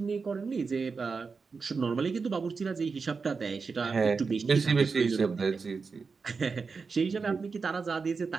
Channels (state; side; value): quieter; left; 4.9 dB